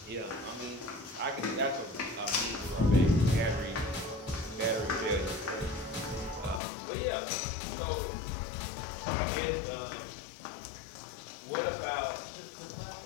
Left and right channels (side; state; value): right; drops out; at 6.6 s